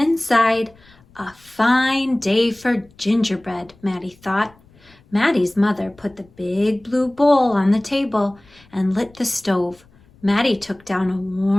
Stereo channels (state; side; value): noise; left; rumble, 29 dB below the sound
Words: A fine day for gingerbread, Maddie thought. Maddie's mother put the big blue bowl on the table and lit the stove. Maddie took down a